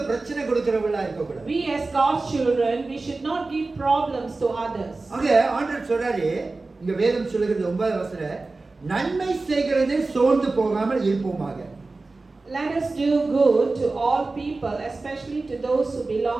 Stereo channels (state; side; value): quieter; left; 3.5 dB